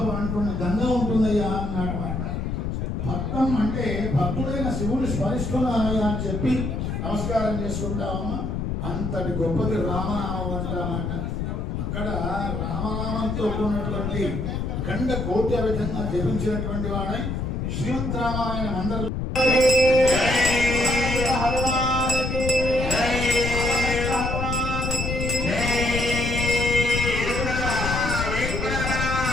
అంటున్న గంగ ఉంటుందయ్యా అన్నాడమాట. భక్తం అంటే భక్తుడైన శివుని స్మరిస్తున్నానయ్యా అని చెప్పి నమస్కారం చేసుకుంటామమ్మా. అంతటి గొప్పది రామనామం అంటామంట. అక్కడ రామనామంతో కూడినటువంటి గండ కోటి విధంగా జపించినటువంటి వాడై శ్రీమద్ రామాయణం అందరూ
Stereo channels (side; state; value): left; noise; rumble, 2 dB below the sound